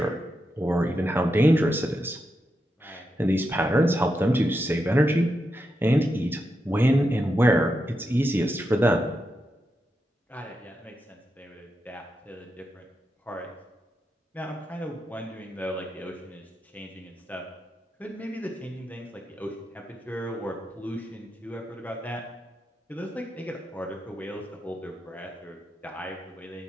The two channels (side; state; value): both; normal; correlation 0.86